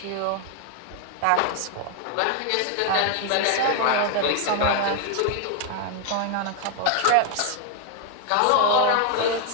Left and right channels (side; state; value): both; different; correlation 0.00